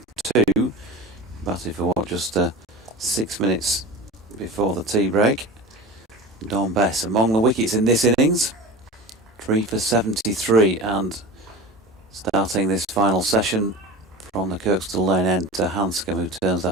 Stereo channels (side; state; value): both; normal; correlation 0.31